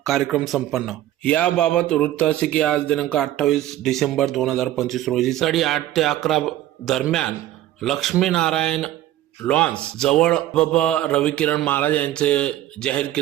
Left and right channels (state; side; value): quieter; left; 13.7 dB